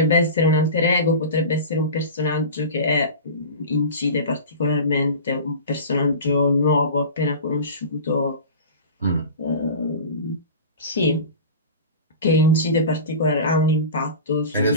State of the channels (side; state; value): both; inverted; correlation -0.32